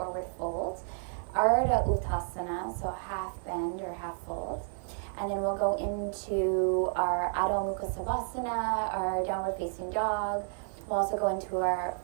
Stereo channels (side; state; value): left; silent; 57 dB below the other